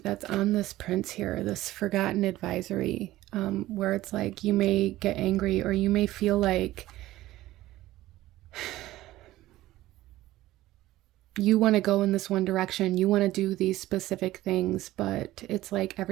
on this prince here, this forgotten advisory, where it's like you may get angry, or you may feel like you want to go in this one direction, you want to do these specific things, but it's like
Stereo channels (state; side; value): quieter; left; 16.0 dB